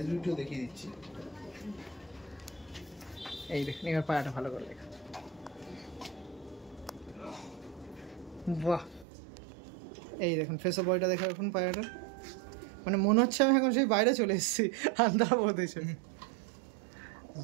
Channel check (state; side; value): drops out; left; at 9.1 s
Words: দেখিয়ে দিচ্ছি, এই দেখুন। এবার পায়রাটা ভালো করে দেখুন, বাহ। এই দেখুন ফেস অফ বয়টা দেখে এখন পায়রাটা, মানে মনে হচ্ছে আমি এখন সেই বাইরে চলে এসেছি আন্ধ্রা প্রদেশে।